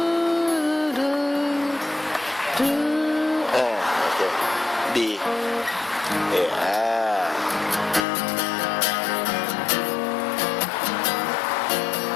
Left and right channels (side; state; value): right; drops out; at 8.1 s